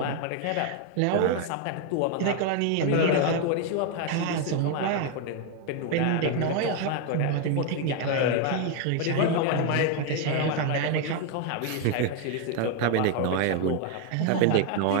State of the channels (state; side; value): different; both; correlation 0.01